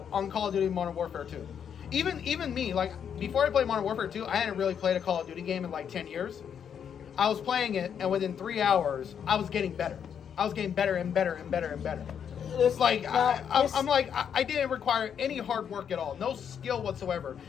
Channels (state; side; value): quieter; right; 8.0 dB